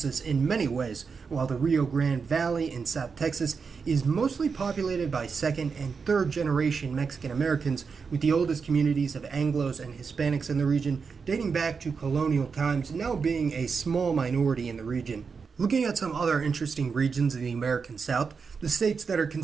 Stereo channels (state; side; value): quieter; left; 5.4 dB